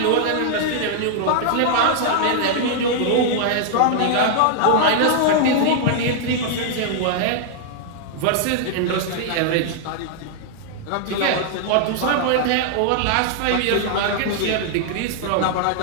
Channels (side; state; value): both; different; correlation -0.01